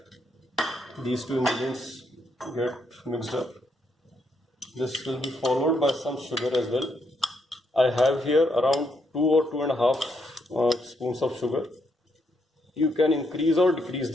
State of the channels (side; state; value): both; normal; correlation 0.77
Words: these 2 ingredients get mixed up. This will be followed by some sugar as well. I have here around 2 or 2.5 spoons of sugar. You can increase or decrease